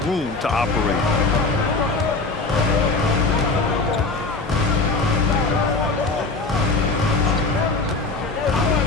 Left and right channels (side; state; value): right; quieter; 3.6 dB